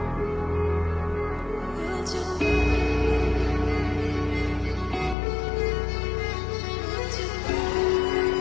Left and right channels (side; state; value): right; drops out; at 5.2 s